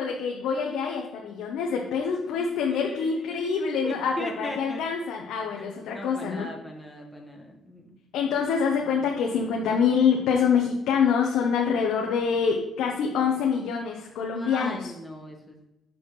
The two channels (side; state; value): right; quieter; 5.9 dB